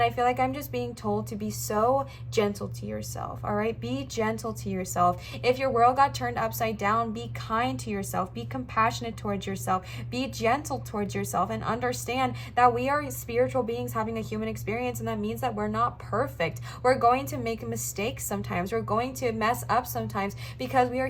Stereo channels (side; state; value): both; identical; correlation 1.00